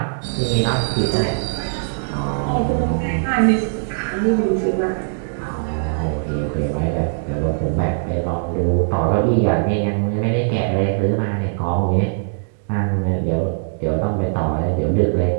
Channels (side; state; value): left; silent; digital silence